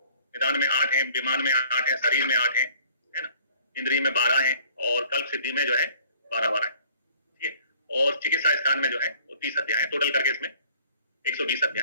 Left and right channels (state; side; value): inverted; both; correlation -0.55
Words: निदान में 8 है, विमान में 8 है, शरीर में 8 है ना, इंद्रिय में 12 है और कल्प सिद्धि में जो है 12 है। ठीक है। और चिकित्सा स्थान में जो है वो 30 अध्याय है। टोटल करके इसमें 120